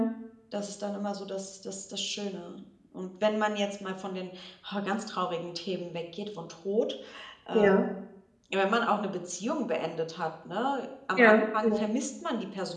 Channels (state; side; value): identical; both; correlation 1.00